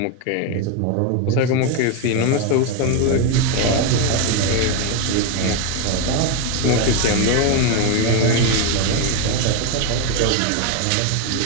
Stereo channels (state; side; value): different; both; correlation 0.02